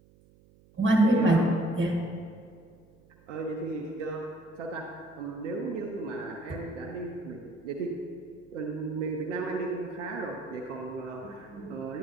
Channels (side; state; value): right; noise; hum, 27 dB below the sound